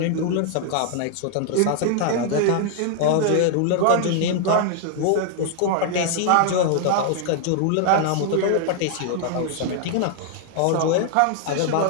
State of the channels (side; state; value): both; different; correlation 0.00